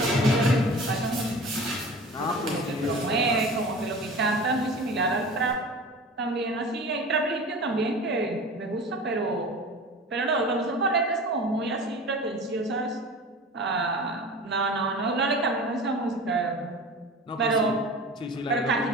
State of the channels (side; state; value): both; normal; correlation 0.37